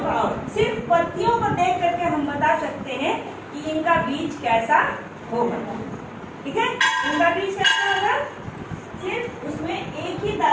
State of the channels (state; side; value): identical; both; correlation 1.00